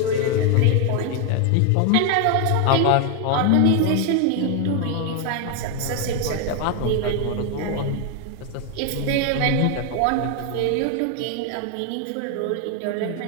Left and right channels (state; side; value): different; both; correlation 0.01